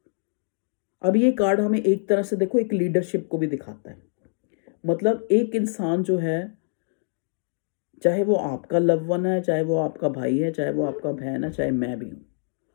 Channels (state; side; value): silent; right; digital silence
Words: अब ये कार्ड हमें एक तरह से देखो एक लीडरशिप को भी दिखाता है, मतलब एक इंसान जो है, चाहे वो आपका लव वन है, चाहे वो आपका भाई है, चाहे वो आपका बहन है, चाहे मैं भी हूँ,